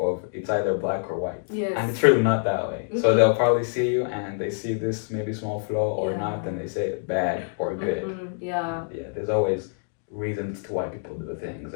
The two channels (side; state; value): right; silent; digital silence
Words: it's either black or white. Yes. And it's really not that way. So they'll probably see you and they see this maybe small flaw or not, and they say bad or good. Yeah. Yeah, there's always reasons to why people do things,